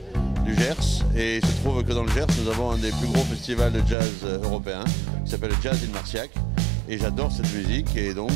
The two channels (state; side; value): drops out; left; at 4.0 s